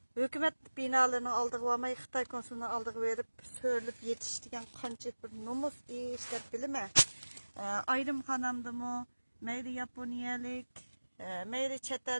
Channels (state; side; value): inverted; both; correlation -1.00